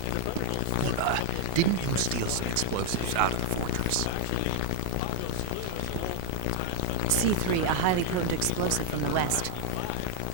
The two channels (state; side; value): different; both; correlation 0.01